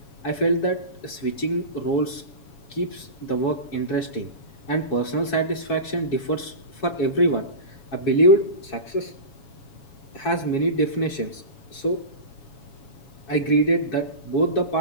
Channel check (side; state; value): right; late; 7.2 ms